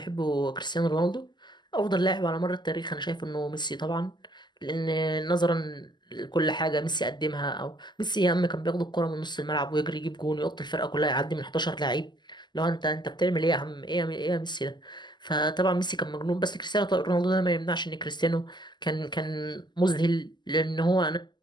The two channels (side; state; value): right; late; 0.21 ms